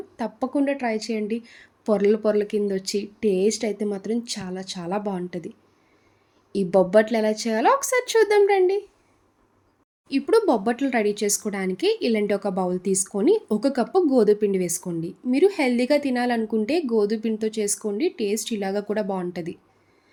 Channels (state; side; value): identical; both; correlation 1.00